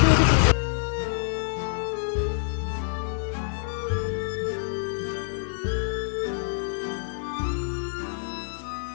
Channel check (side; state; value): right; silent; digital silence